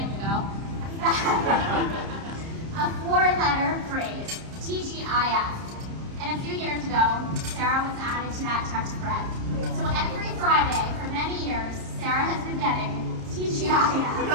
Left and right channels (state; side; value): late; left; 30 ms